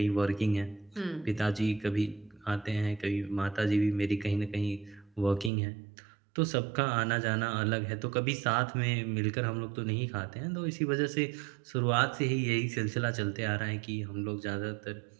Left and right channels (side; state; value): left; drops out; at 5.5 s